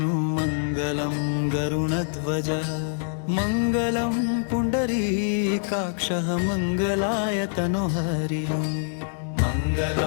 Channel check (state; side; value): silent; right; digital silence